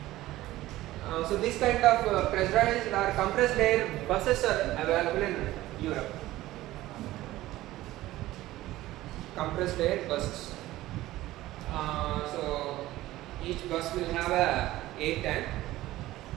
So this kind of pressurized or compressed air buses are available in Europe. Compressed air buses. So each bus will have a air tank,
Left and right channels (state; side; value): quieter; left; 16.3 dB